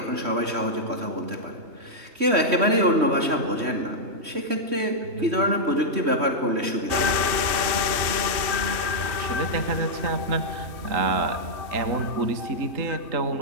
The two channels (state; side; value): late; left; 3.2 ms